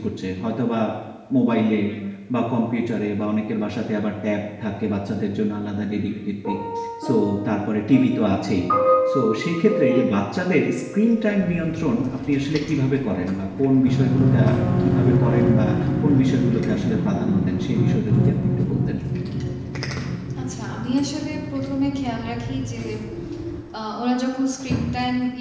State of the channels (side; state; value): both; identical; correlation 1.00